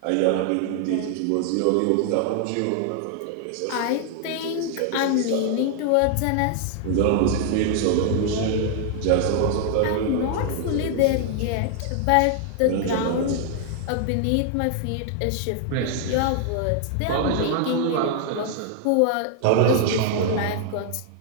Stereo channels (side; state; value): both; different; correlation 0.00